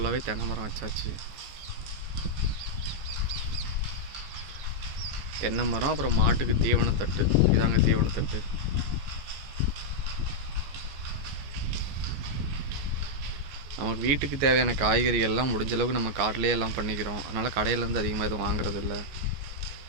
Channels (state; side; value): late; left; 14 ms